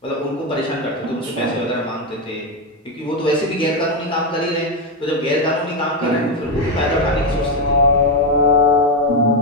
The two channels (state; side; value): normal; both; correlation 0.07